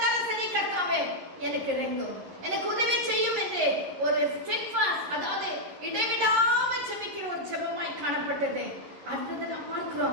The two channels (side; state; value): left; late; 11 ms